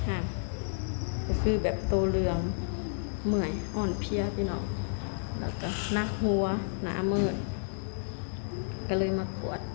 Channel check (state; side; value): silent; right; digital silence